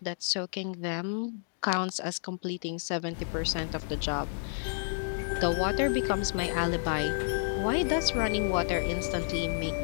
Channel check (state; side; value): silent; right; digital silence